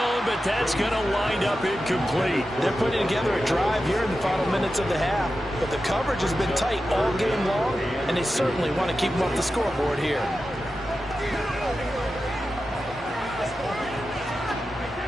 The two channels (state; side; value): normal; both; correlation 0.91